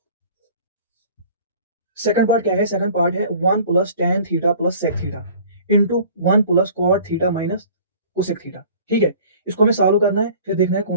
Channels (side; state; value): both; inverted; correlation -0.48